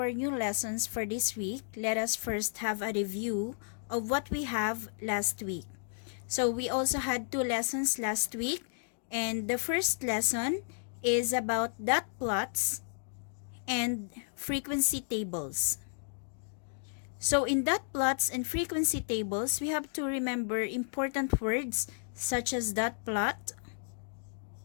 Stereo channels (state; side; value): silent; right; digital silence